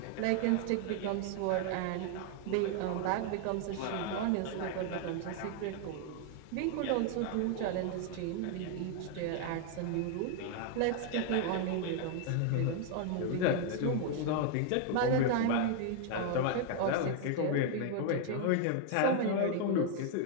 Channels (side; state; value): both; different; correlation 0.00